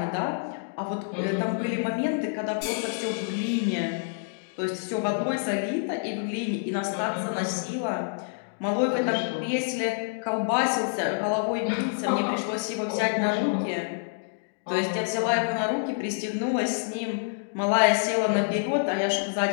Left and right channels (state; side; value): silent; right; digital silence